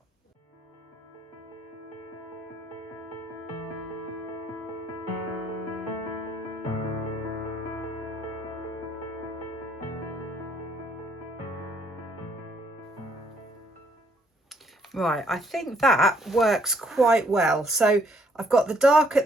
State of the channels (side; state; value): both; normal; correlation 0.67